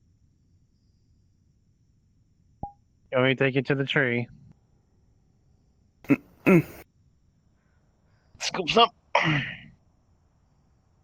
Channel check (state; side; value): identical; both; correlation 1.00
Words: You want me to take you to the tree? Mm. Scoops up!